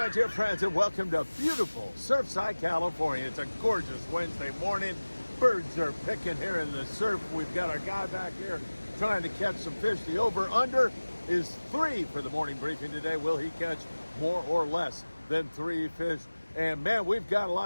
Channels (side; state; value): both; inverted; correlation -1.00